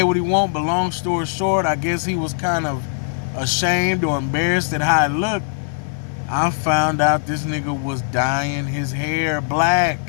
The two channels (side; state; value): right; silent; digital silence